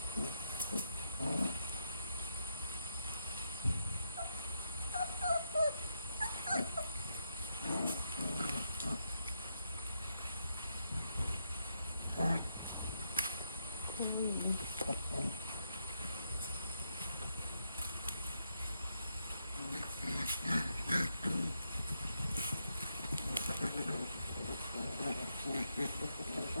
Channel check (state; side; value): inverted; both; correlation -0.80